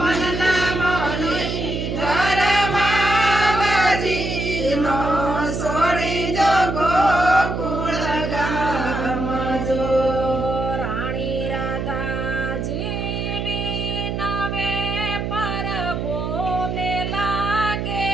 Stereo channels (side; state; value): right; noise; hum, 3 dB below the sound